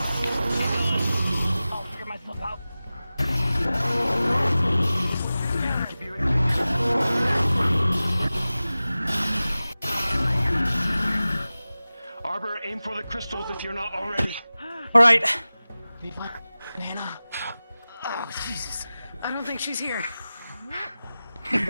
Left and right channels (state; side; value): inverted; both; correlation -0.96